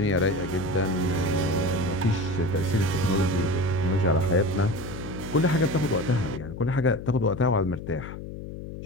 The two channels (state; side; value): noise; left; hum, 10 dB below the sound